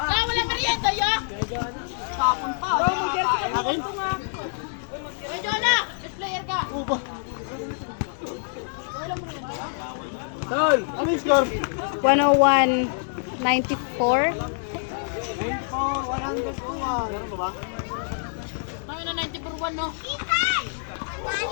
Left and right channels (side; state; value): right; silent; digital silence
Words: merienda ya? Tapon pa. Uy, Jonah! Best player ka! Tol, ano yung score? 101-94. 100 ko nga. Meron ba? Kami na 90 per 1, no? Ikan!